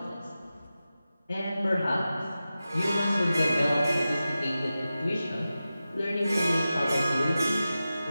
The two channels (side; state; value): both; inverted; correlation -0.94